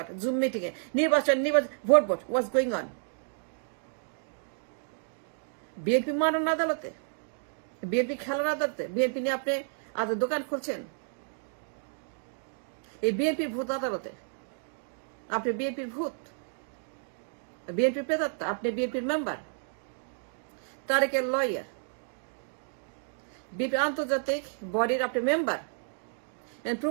জুম মিটিং এ নির্বাচন ভোট ওয়াজ গোয়িং অন। বিএনপি মানন আদালতে, বিএনপি খেলার আদালতে, বিএনপি নিয়ে আপনি দোকান খুলছেন। এই বিএনপি ভূত আদালতে আপনি বিএনপির ভূত, বিএনপির প্রেতাত্মা, আপনি বিএনপির মেম্বার, তারেকের লয়ার, বিএনপি আন্তর্জাতিক বডির আপনি member, and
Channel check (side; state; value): left; silent; digital silence